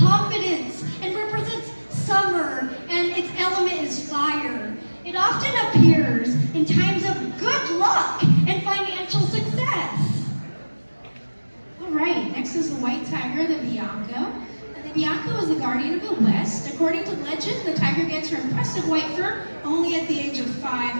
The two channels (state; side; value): inverted; both; correlation -1.00